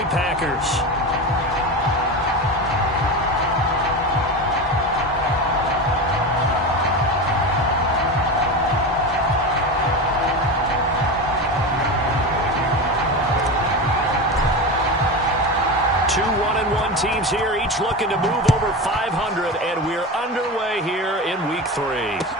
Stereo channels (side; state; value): both; normal; correlation 0.23